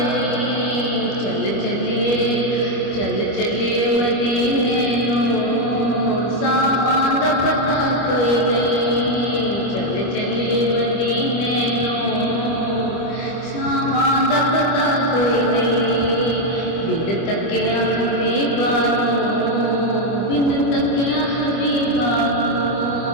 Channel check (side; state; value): right; late; 25 ms